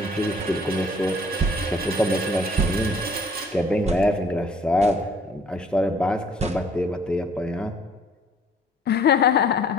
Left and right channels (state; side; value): normal; both; correlation 0.56